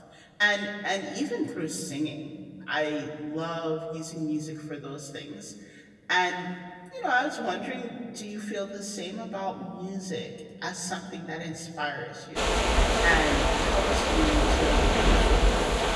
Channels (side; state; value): both; identical; correlation 1.00